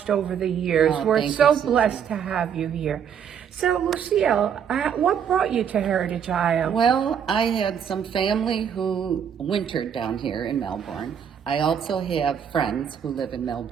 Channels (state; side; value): quieter; left; 8.0 dB